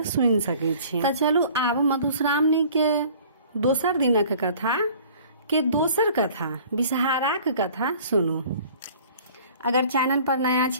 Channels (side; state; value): both; inverted; correlation -0.50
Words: सुनि सकै छी। तऽ चलू आब मधुश्रावणी के दोसर दिनक कथा के दोसर कथा विषहाराक कथा सुनू। अगर चैनल पर नया